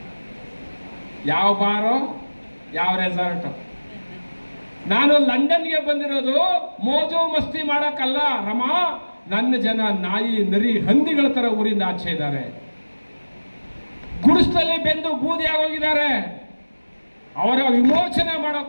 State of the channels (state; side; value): inverted; both; correlation -1.00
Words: ಯಾವ ಬಾರೋ, ಯಾವ ರೆಸಾರ್ಟು. ನಾನು ಲಂಡನ್ಗೆ ಬಂದಿರೋದು ಮೋಜು ಮಸ್ತಿ ಮಾಡಕ್ಕಲ್ಲ ರಮಾ. ನನ್ನ ಜನ ನಾಯಿ, ನರಿ, ಹಂದಿಗಳ ತರ ಊರಿಂದ ಆಚೆ ಇದ್ದಾರೆ. ಗುಡಿಸಲಲ್ಲಿ ಬೆಂದು ಬೂದಿ ಆಗೋಗಿದ್ದಾರೆ. ಅವರ ವಿಮೋಚನೆ